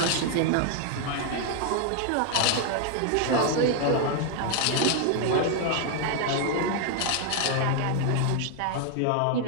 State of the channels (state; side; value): different; both; correlation 0.00